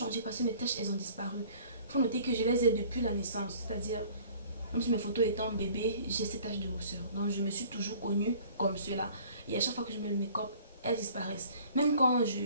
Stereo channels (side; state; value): both; inverted; correlation -0.51